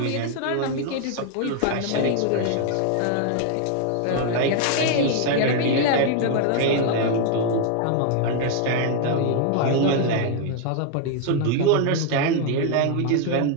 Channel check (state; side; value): different; both; correlation 0.00